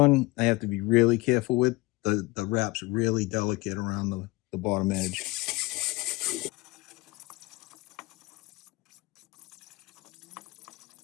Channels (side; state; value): right; quieter; 22.4 dB